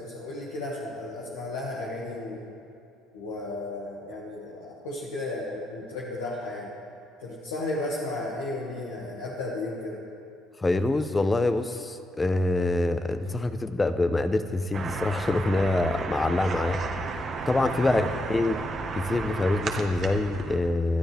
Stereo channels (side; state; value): both; normal; correlation 0.83